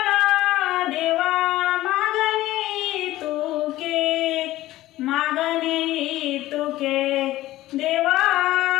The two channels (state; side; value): quieter; right; 15.9 dB